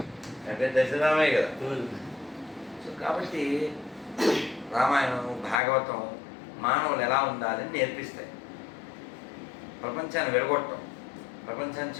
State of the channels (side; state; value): right; drops out; at 5.6 s